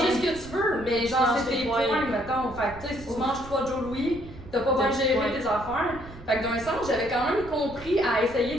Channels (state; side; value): noise; right; rumble, 16 dB below the sound